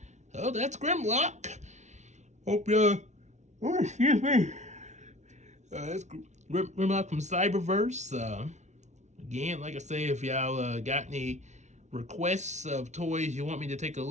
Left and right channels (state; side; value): late; left; 0.33 ms